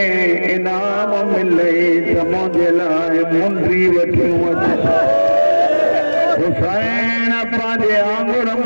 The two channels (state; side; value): inverted; both; correlation -1.00